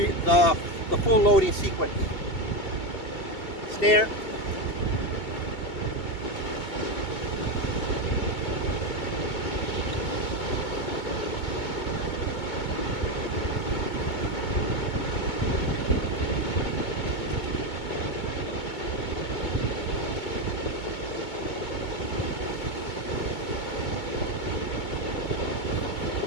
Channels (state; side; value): late; right; 2.2 ms